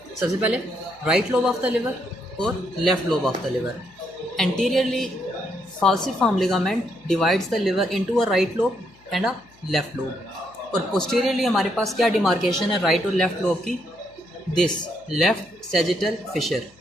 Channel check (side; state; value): left; noise; hum, 29 dB below the sound